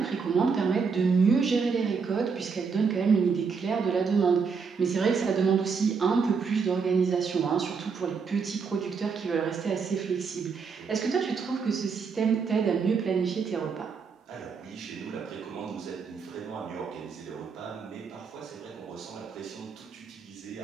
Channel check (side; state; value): left; quieter; 5.5 dB